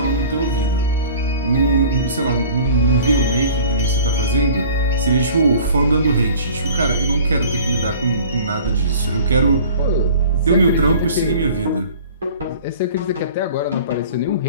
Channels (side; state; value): both; inverted; correlation -0.45